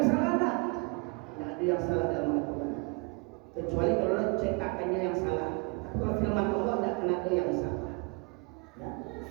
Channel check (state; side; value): quieter; left; 31.9 dB